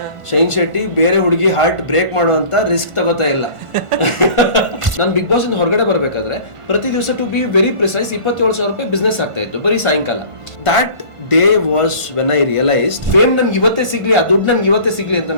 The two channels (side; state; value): left; late; 1.5 ms